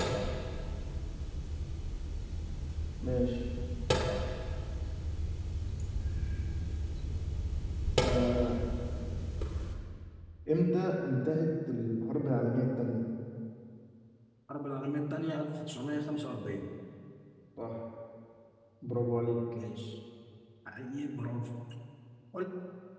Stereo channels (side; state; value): both; identical; correlation 1.00